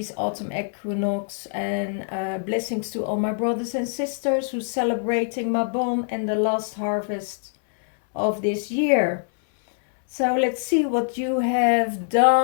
autumn equinox, and blessings to all my brothers and sisters who celebrating Mabon and the last harvest of this year. So let's see what you have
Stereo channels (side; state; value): right; silent; 63 dB below the other